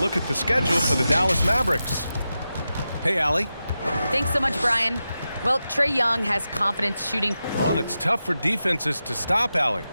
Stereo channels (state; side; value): inverted; both; correlation -0.91